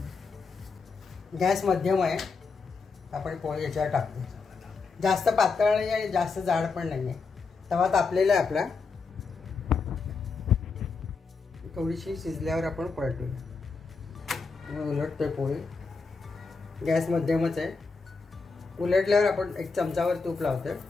गॅस मध्यम आहे. आपण पोळी याच्यावर टाकतो. जास्त पातळ नाही आणि जास्त जाड पण नाही आहे. तवा तापलेला आहे आपला. थोडीशी शिजल्यावर आपण पलटूया. उलटतोय पोळी. गॅस मध्यमच आहे. उलटल्यावर आपण एक चमचावर तूप लावतोय.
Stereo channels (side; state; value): right; quieter; 4.6 dB